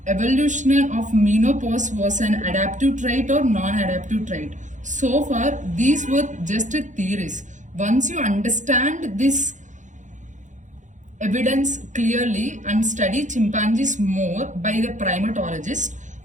evolution of menopause was an adaptive trait or non-adaptive trait. So far, these were just theories. Once you understand this evidence clearly and study chimpanzees more by the primatologist,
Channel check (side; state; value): left; late; 0.36 ms